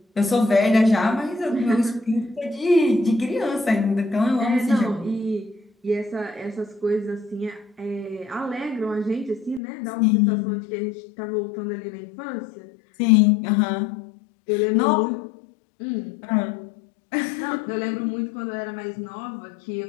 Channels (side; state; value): right; drops out; at 9.6 s